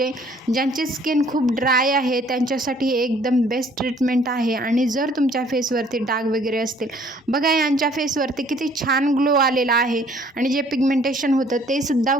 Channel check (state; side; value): normal; both; correlation 0.59